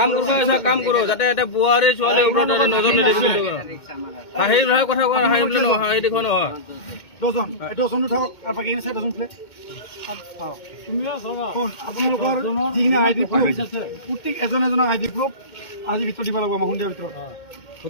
কাম কৰো যাতে এটা বোৱাৰী ছোৱালী ওপৰত নজৰ নিদিবি হাঁহি কথা কোৱা হাঁহি বুলি নহয় হাঁহি দেখুৱা নহয় দহজন দহজনো থাকক আৰু বাকী চাই দহজন প্লেট আপোনালোকৰ যিখিনি আই ডি প্ৰুফ প্ৰত্যেক এজন এজনৰ আই ডি প্ৰুফ আজি ভিতৰত দিব লাগিব আমাৰ সন্ধিয়াৰ ভিতৰত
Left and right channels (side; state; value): right; late; 2.2 ms